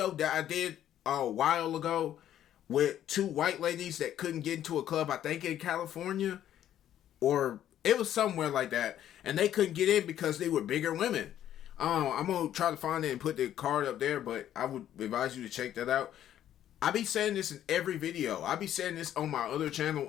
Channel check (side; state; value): right; quieter; 11.3 dB